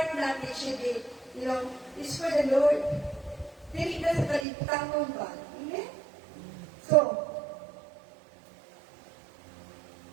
natin should be, is for the Lord. Dili na sa kalibutan mo ba? Amen? So,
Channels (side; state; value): left; drops out; at 4.5 s